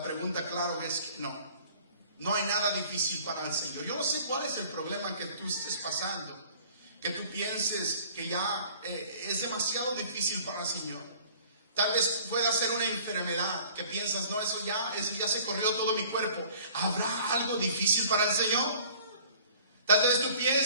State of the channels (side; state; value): both; inverted; correlation -0.51